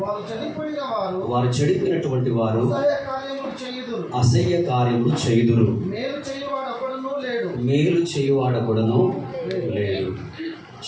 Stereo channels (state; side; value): identical; both; correlation 1.00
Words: వారు చెడిపోయినటువంటి వారు అసహ్య కార్యములు చేయుదురు. మేలు చేయువాడొకడును లేడు.